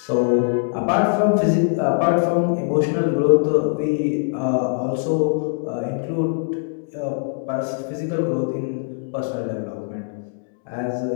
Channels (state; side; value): silent; right; digital silence